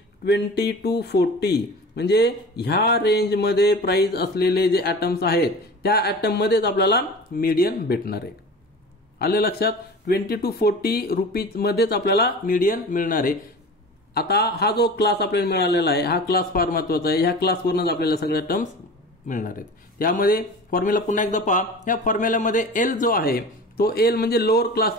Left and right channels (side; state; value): both; normal; correlation 0.36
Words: 20 to 40. म्हणजे ह्या रेंजमध्ये प्राइस असलेले जे ॲटम्स आहेत त्या ॲटम मध्येच आपल्याला मीडियन भेटणार आहे. आलं लक्षात? 20 to 40 रुपीज मध्येच आपल्याला मीडियन मिळणार आहे. आता हा जो क्लास आपल्याला मिळालेला आहे हा क्लास फार महत्त्वाचा आहे. ह्या क्लासवरूनच आपल्याला सगळ्या टर्म्स मिळणार आहेत. त्यामध्ये फॉर्म्युला पुन्हा एकदा पहा. ह्या फॉर्म्युल्यामध्ये एल जो आहे तो एल म्हणजे lower